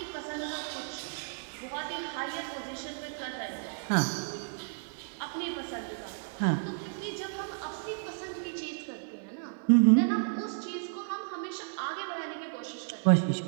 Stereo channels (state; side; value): silent; left; digital silence